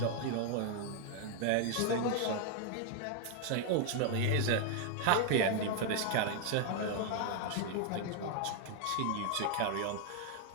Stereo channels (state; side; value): different; both; correlation 0.00